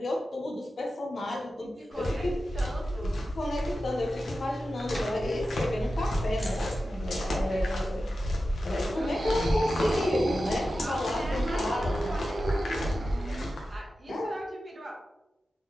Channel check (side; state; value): both; normal; correlation 0.93